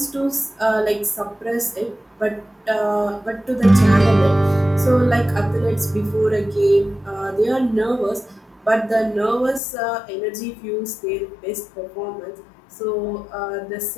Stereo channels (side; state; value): right; drops out; at 9.6 s